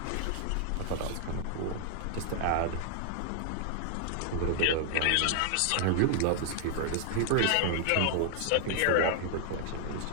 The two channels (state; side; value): different; both; correlation 0.00